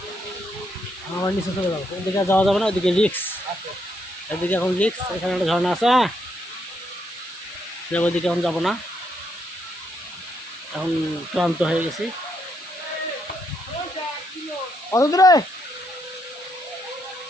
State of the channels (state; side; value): normal; both; correlation 0.76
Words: আমার নিচে চলে যাবো। ওইদিকে যাওয়া যাবে না, ওইদিকে রিক্স। এদিকে এখন রিক্স। এখানে একটা ঝর্ণা আছে। হ্যাঁ যাবো, ওইদিকে এখন যাবো না, এখন ক্লান্ত হয়ে গেছি। কত দূরে